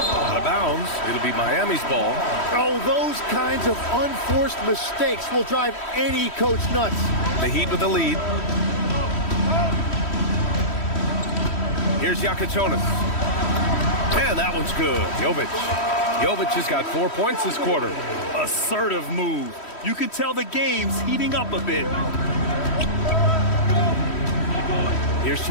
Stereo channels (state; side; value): late; right; 3.1 ms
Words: of bounds. It'll be Miami's ball. Oh, those kinds of unforced mistakes will drive any coach nuts. The Heat with the lead. Here's Jakic. And that one's good. Jovic has got 4 points this quarter. Assertive move. You can tell the game's heating up a bit. Here's